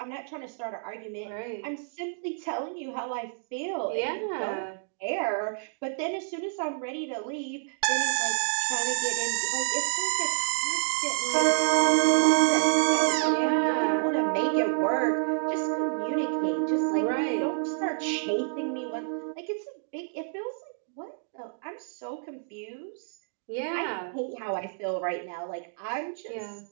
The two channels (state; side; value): silent; left; digital silence